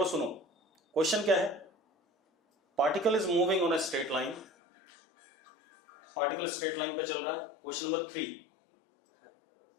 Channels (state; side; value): drops out; right; at 4.5 s